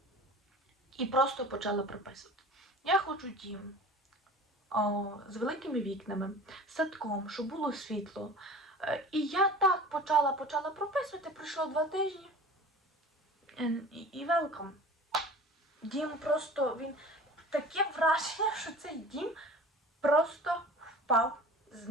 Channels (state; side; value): normal; both; correlation 0.40